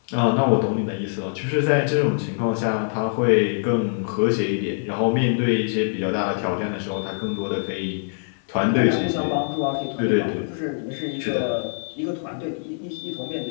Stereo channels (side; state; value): right; silent; 63 dB below the other